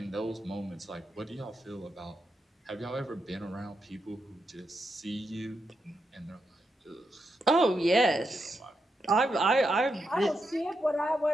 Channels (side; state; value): both; normal; correlation 0.84